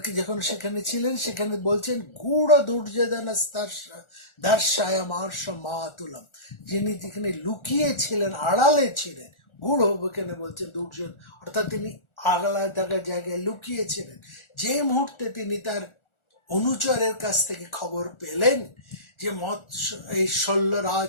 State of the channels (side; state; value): right; late; 1.4 ms